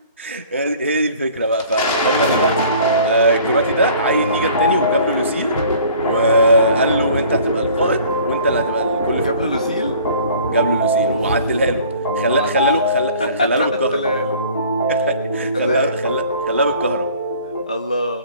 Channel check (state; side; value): inverted; both; correlation -0.50